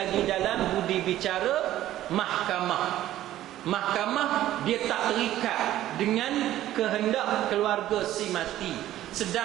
dalam budi bicara mahkamah. Mahkamah dia tak terikat dengan kehendak keluarga si mati.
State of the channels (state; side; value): quieter; left; 13.6 dB